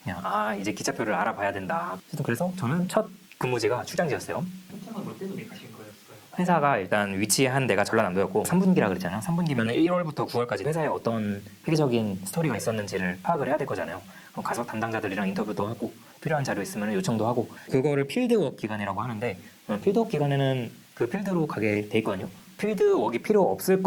그냥 이제 기차표를 알아봐야 된다. 그래서 저는 첫 근무지가 출장지였어요. 출장은 뭐 때문에 가신 거였어요? 회사가 일단 위치한 데가 전라남도였고 3분기라 그랬잖아요. 3분기면 1월부터 9월까지 회사에 어떤 회계적인 스토리가 있었는지를 파악을 해야 될 거잖아요. 그럼 가서 담당자들이랑 인터뷰도 하고 필요한 자료 있으면 요청도 하고 그거를 필드워크 기간이라고 하는데 필드워크 기간에는 그 필드로 가게 돼 있거든요. 필드워크가 필요 없을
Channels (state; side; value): identical; both; correlation 1.00